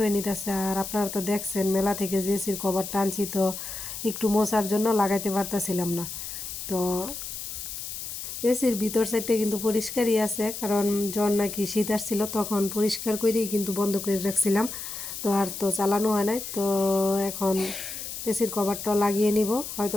নিতেছে। আর আপনারা তো দেখছেন মেলা থেকে যে এসির কভার টানছি, তো একটু মোছার জন্য লাগাইতে পারতেছিলাম না। তো এসির ভিতর সাইডটা কিন্তু পরিষ্কারই আছে, কারণ জ্বর নাকি শীত আসছিল, তখন পরিষ্কার করেই কিন্তু বন্ধ করে রাখছিলাম। তো আর তো চালানো হয় নাই। তো এখন এসির কভারটা লাগিয়ে নিব, হয়তো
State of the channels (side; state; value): left; noise; hiss, 8 dB below the sound